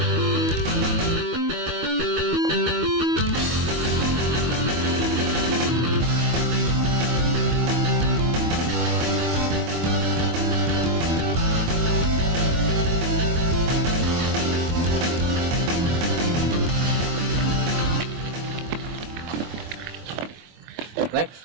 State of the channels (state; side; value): late; left; 24 ms